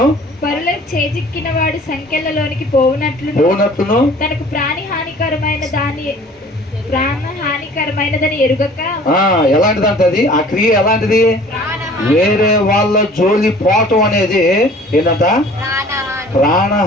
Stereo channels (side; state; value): both; normal; correlation 0.49